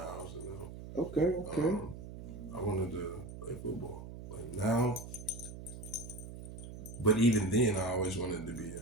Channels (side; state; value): right; noise; hum, 11 dB below the sound